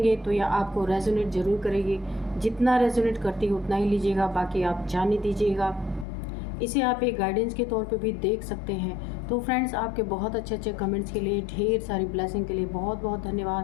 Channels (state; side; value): drops out; right; at 6.1 s